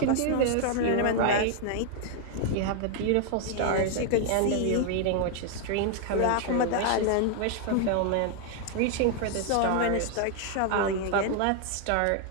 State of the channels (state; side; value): different; both; correlation 0.00